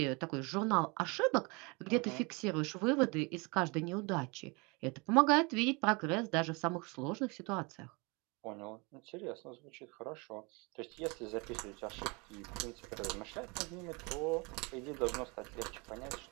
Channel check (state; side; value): quieter; left; 28.7 dB